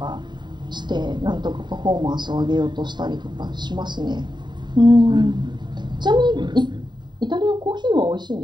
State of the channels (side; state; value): left; late; 0.22 ms